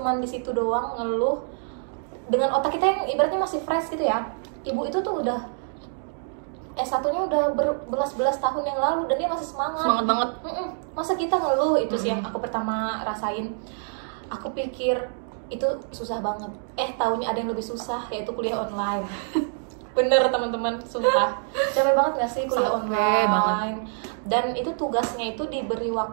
di situ doang ngeluh dengan otak kita yang ibaratnya masih fresh gitu ya. Ibu itu tuh udah S1-nya udah berbelas-belas tahun yang lalu dan dia masih semangat banget. Masa kita ngeluh? Itu sih yang aku pertama rasain. Aku pikir itu susah banget, taunya ada yang lebih susah, yaitu kuliah online. Bener teman-teman, sumpah capek banget gak sih kuliah online banget. Dan itu tugasnya itu diberi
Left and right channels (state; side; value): silent; left; digital silence